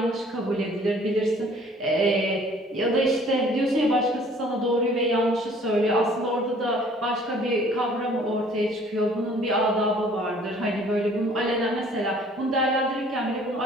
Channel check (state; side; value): normal; both; correlation 0.55